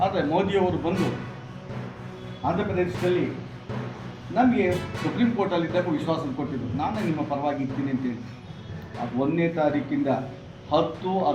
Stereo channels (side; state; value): both; identical; correlation 1.00